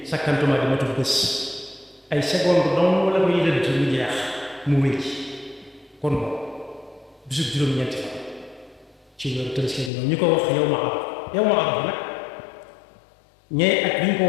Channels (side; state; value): right; drops out; at 9.9 s